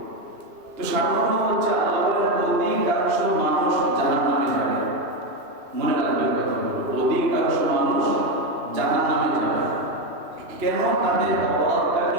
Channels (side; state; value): left; late; 2.8 ms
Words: তো সাধারণত হচ্ছে আল্লাহ বলেন, অধিকাংশ মানুষ জাহান্নামে যাবে। মনে রাখবেন কথাগুলো, অধিকাংশ মানুষ জাহান্নামে যাবে। কেন? তাদের অপরাধটা